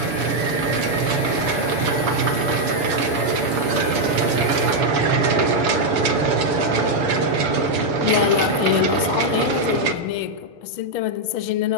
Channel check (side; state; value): left; late; 7.1 ms